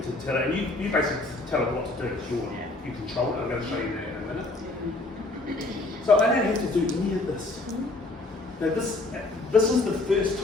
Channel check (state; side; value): quieter; right; 3.0 dB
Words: to tell it, and you basically tell it what to do. It's your, you control it. I'm going to show you that in a minute. So I don't have to do any of this. Now this is the first